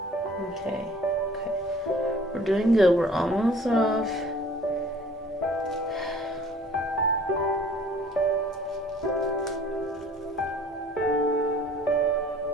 Okay, we're doing good. We're almost off.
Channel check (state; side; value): normal; both; correlation 0.51